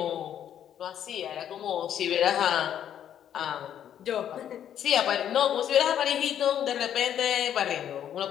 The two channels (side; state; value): right; quieter; 10.0 dB